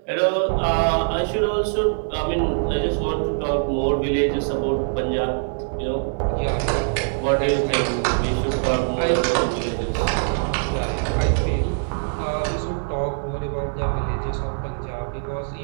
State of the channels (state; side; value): silent; left; digital silence